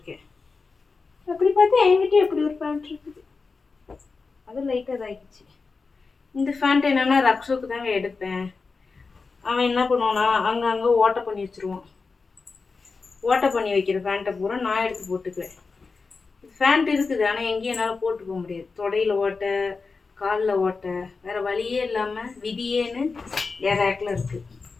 அப்படி பார்த்தா என்கிட்ட எப்படி ஒரு பேண்ட் இருக்குது. அது லைட்டாக இதாகிடுச்சு. இந்த பேண்ட் என்னன்னா ரக்ஷோக்கு தாங்க எடுப்பேன். அவன் என்ன பண்ணுவானா அங்கங்கே ஓட்டை பண்ணி வச்சுருவான். ஓட்டை பண்ணி வைக்கிற பேண்ட்டை பூரா நான் எடுத்து போட்டுக்குவேன். பேண்ட் இருக்குது, ஆனால் எங்கேயும் என்னால் போட்டு போக முடியாது. தொடையில் ஓட்டை, காலில் ஓட்டை, வேறு வழியே இல்லாமல் விதியேன்னு என் ரேக்கில் இருக்குது.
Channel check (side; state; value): right; quieter; 4.4 dB